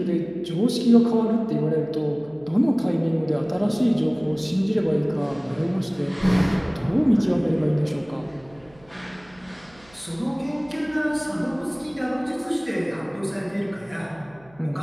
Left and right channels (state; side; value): noise; right; hum, 28 dB below the sound